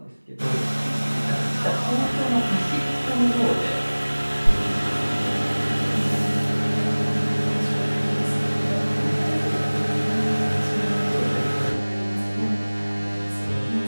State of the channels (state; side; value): inverted; both; correlation -1.00